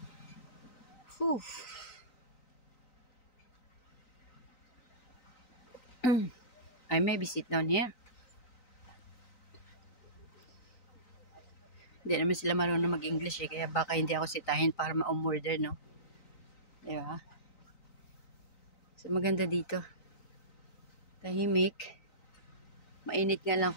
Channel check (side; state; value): right; late; 3.9 ms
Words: Whew. I maybe sit down here. Hindi naman sila marunong mag-English eh. Kaya baka hindi ako sitahin para ma-umorder, no? Di ba? So, maganda dito. Tahimik. Mainit nga lang